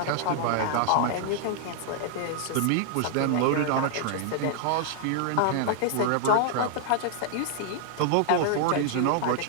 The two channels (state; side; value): different; both; correlation 0.00